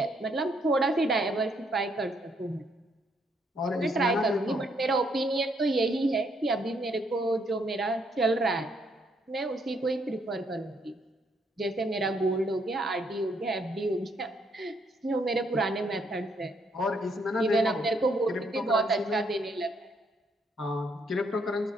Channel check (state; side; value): normal; both; correlation 0.72